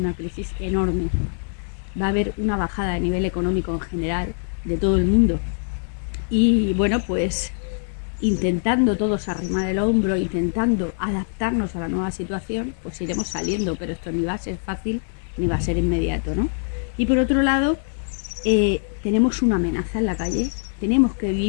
crisis enorme. Va a haber una bajada a nivel económico en general de todo el mundo. Y bueno, pues intentando todos arrimar el hombro, intentando adaptarnos a la nueva situación, pues iremos saliendo, pero esto ni va a ser fácil ni va a ser inmediato, ¿no? Y por otro lado, tenemos una amenaza en la calle, tenemos que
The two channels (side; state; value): right; silent; 62 dB below the other